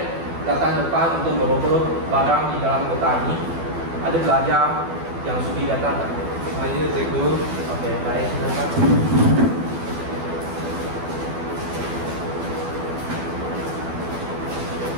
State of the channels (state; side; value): late; left; 12 ms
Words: datang depan untuk merogoh barang di dalam kotak ini. Ada pelajar yang sudi datang tak? Saya cikgu. Okey, baik. Silakan.